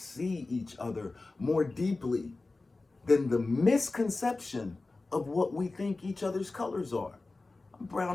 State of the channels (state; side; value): quieter; right; 3.4 dB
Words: each other more deeply than the misconception of what we think each other's colors are. I'm